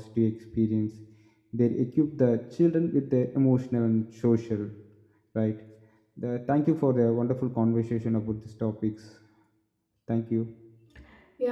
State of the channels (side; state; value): both; identical; correlation 1.00